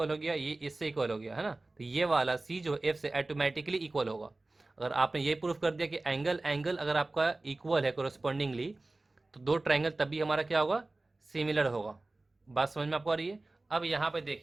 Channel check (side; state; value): left; quieter; 3.0 dB